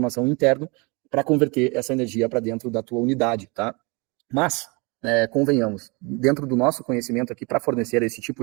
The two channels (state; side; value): quieter; left; 29.1 dB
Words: interno para converter essa energia para dentro da tua unidade. Tá? Mas, convenhamos, dentro do nosso conhecimento aqui, para fornecer esse